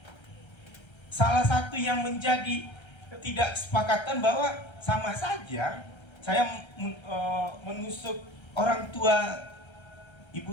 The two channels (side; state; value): right; late; 1.3 ms